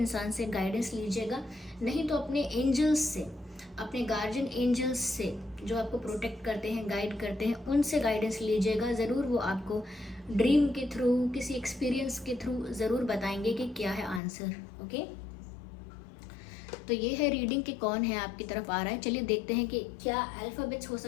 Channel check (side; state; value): right; drops out; at 14.2 s